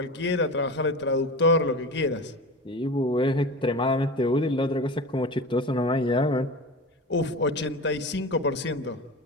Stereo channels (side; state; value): both; normal; correlation 0.30